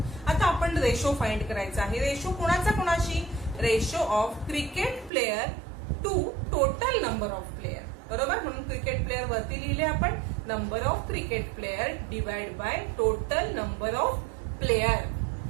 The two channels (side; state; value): left; drops out; at 5.1 s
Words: आता आपण रेशो फाइंड करायचा आहे. रेशो कोणाचा कोणाशी ratio of cricket player to total number of player. बरोबर, म्हणून क्रिकेट प्लेयर वरती लिहिले आपण, number of cricket player divide by total number of player.